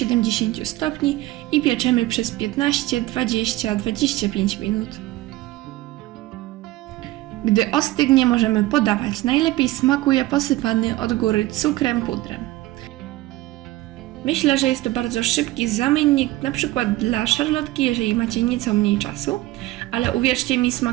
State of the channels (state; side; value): quieter; left; 17.5 dB